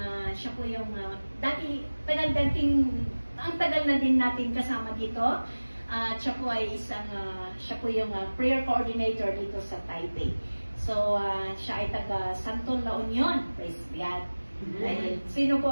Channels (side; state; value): both; inverted; correlation -1.00